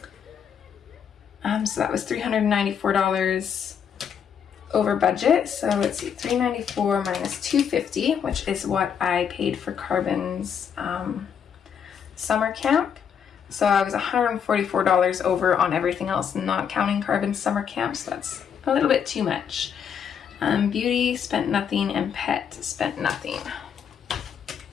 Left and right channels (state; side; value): quieter; right; 7.8 dB